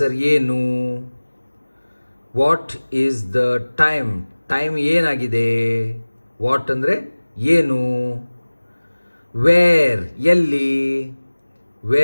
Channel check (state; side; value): inverted; both; correlation -1.00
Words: ಏನು. What is the time, time ಏನಾಗಿದೆ. ವಾಟ್ ಅಂದರೆ ಏನು. ವೇರ್, ಎಲ್ಲಿ.